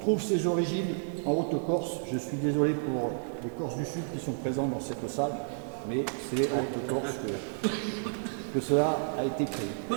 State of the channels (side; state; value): left; silent; digital silence